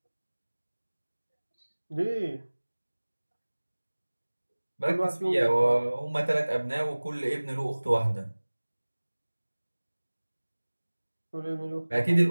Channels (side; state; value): both; inverted; correlation -1.00